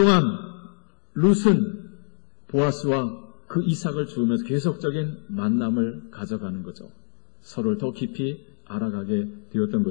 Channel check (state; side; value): silent; right; digital silence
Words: 룻은 보아스와 그 이삭을 주우면서 계속적인 만남을 가져가는 거죠. 서로를 더 깊이 알아가게 되었던